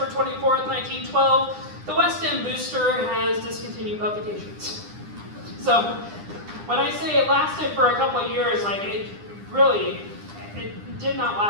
24th, 1912. The West End Booster has discontinued publications. So when I say it lasted for a couple of years, it did not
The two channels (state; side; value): late; left; 9.8 ms